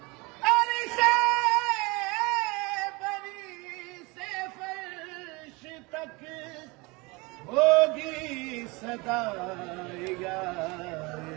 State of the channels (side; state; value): left; quieter; 25.9 dB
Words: ہوگی صدا یاری